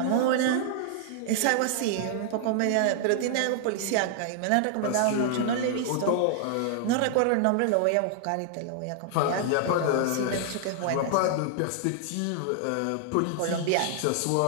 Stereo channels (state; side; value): different; both; correlation -0.01